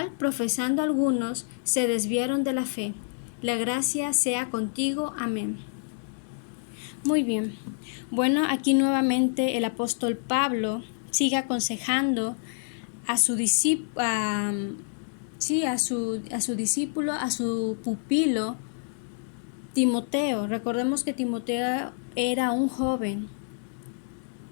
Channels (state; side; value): silent; right; digital silence